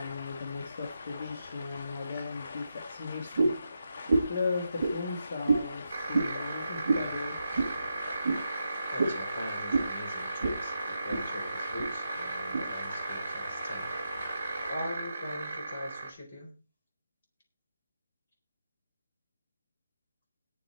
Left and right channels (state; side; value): inverted; both; correlation -0.86